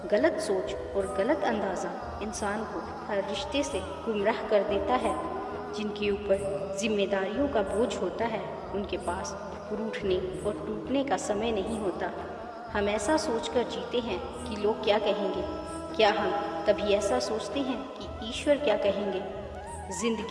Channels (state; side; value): identical; both; correlation 1.00